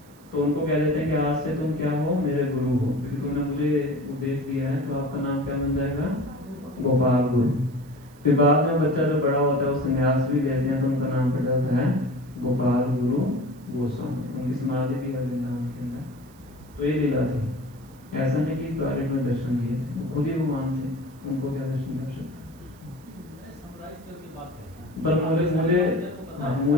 तो उनको कह देते हैं कि आज से तुम क्या हो? मेरे गुरु हो, क्योंकि तुमने मुझे उपदेश दिया है, तो आपका नाम क्या बन जाएगा? गोपाल गुरु। फिर बाद में बच्चा जो बड़ा होता है वो संन्यास भी लेते हैं, तो उनका नाम पड़ जाता है गोपाल गुरु गोस्वामी। उनकी समाधि भी है वृंदावन के अंदर। तो ये लीला थी, ऐसा नहीं कि टॉयलेट में दर्शन दिए थे, वो खुद ही भगवान थे, उनको क्या दर्शन कर सकते। पर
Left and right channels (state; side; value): noise; right; hiss, 28 dB below the sound